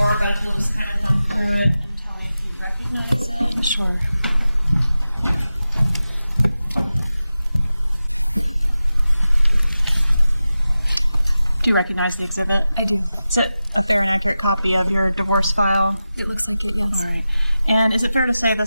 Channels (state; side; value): inverted; both; correlation -0.94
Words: but we'll just kind of come through it and tell me if you recognize it. Sure. Do you recognize the exhibit? I do. Is it a fair and accurate copy of your divorce file? It looks like it, yes. All right. And is it fair to say